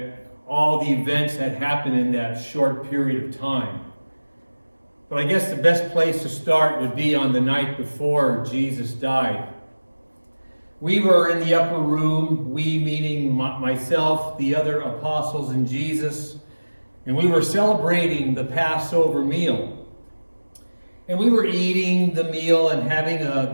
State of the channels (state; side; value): inverted; both; correlation -1.00